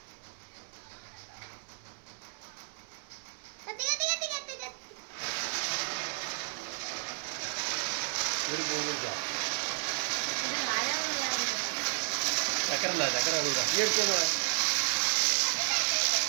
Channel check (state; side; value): silent; left; 56 dB below the other